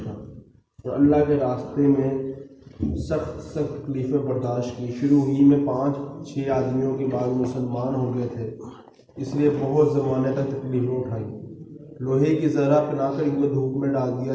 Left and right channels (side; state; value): both; identical; correlation 1.00